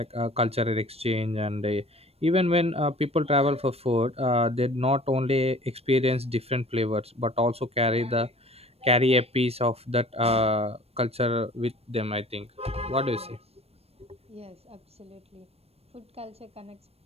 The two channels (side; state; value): left; late; 0.29 ms